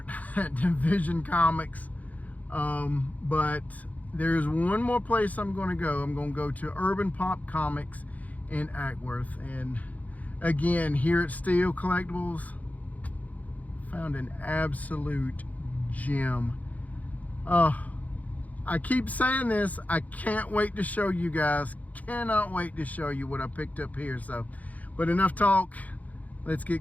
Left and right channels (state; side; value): late; right; 0.075 ms